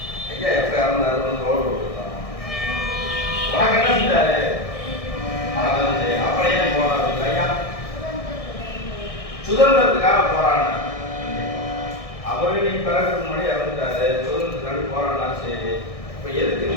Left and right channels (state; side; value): late; right; 1.6 ms